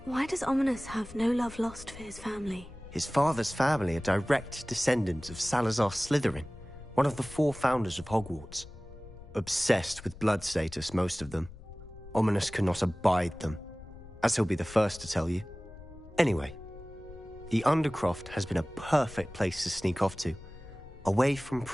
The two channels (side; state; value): left; noise; rumble, 17 dB below the sound